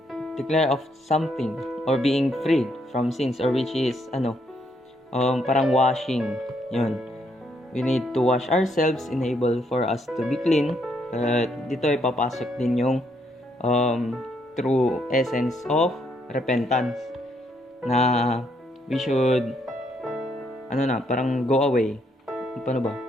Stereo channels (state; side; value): normal; both; correlation 0.73